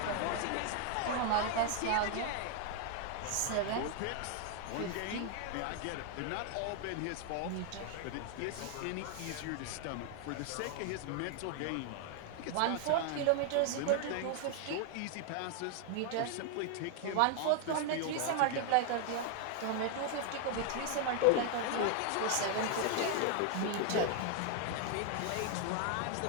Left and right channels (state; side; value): different; both; correlation 0.00